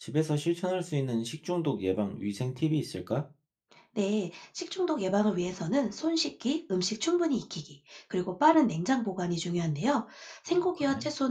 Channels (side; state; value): both; identical; correlation 1.00